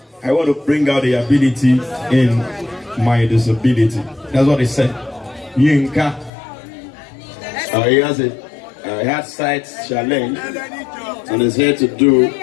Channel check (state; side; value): drops out; right; at 6.3 s